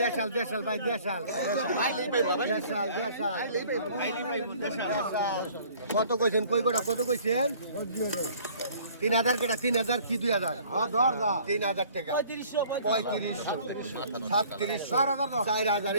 দেশাল দেশাল ভাই দেশাল দেশাল দেশাল কত কইছেন কই গোটা কত কইছেন 3000 কেটা 3000 কি 2000 হ্যাঁ 3000 টাকা 3500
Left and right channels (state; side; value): inverted; both; correlation -0.53